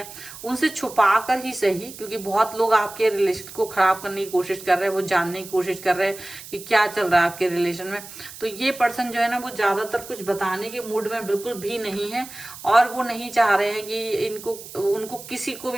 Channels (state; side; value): noise; right; hiss, 15 dB below the sound